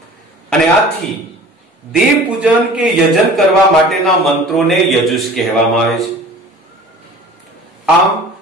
અને આથી દેવ પૂજન કે યજન કરવા માટેના મંત્રોને યજુષ કહેવામાં આવે છે. આમ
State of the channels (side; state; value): both; normal; correlation 0.44